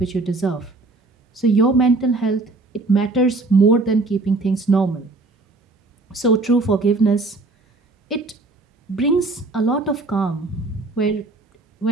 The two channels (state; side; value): quieter; left; 3.4 dB